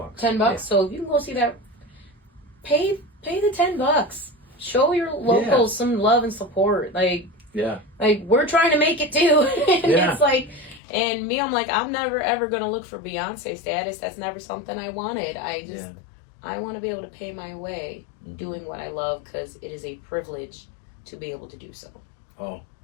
Yeah. So if you can go see that, pay the $10. Show your locals some love and support. Like we're trying to make it too. And it's like, and me, I'm like, I'm never ever gonna look for Beyonce status. That's never something I wanted. I want to be able to pay my way doing what I love, because it is a privilege to be able to do so. Oh,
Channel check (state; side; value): drops out; right; at 10.8 s